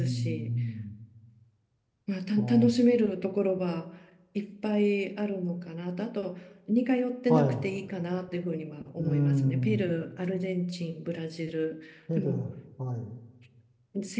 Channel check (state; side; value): identical; both; correlation 1.00